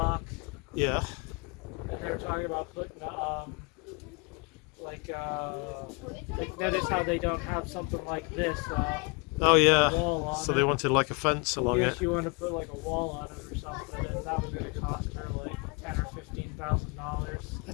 yeah, and they were talking about putting like notice how they don't have something like this. oh yeah, Wall on so it. they wanted like a fence along Yes, it. you want to put like a wall on it or something, and that was going to cost her like $10,000 or $15,000.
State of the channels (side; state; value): right; quieter; 31.0 dB